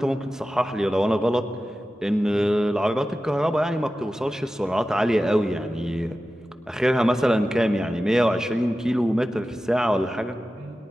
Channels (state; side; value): normal; both; correlation 0.94